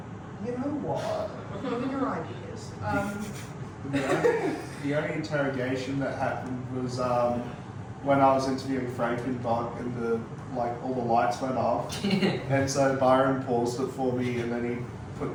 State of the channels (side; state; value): both; identical; correlation 1.00